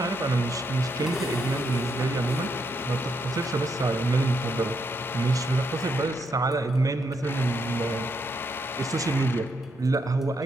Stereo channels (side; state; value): both; normal; correlation 0.78